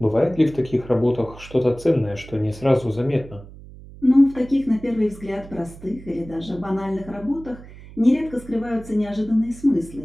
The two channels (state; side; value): noise; right; hum, 18 dB below the sound